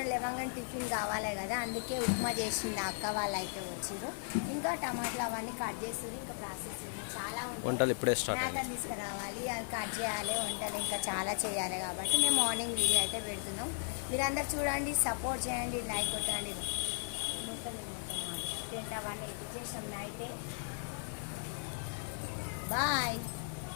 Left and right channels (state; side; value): silent; right; 54 dB below the other